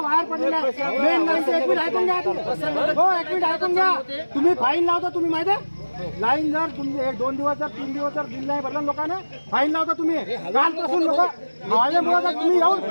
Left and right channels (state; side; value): inverted; both; correlation -1.00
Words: वायर पडलेला ऐकून घ्या. तुम्ही फाईन लावता, तुम्ही माहिती आहे लाईन जर तुम्ही 1-2 दिवस जर 3 दिवस जर बिल नाही भरलं लोकांना फाईन लावता. तुम्ही कालपासून लोक माझ्यामुळे तुम्ही येऊन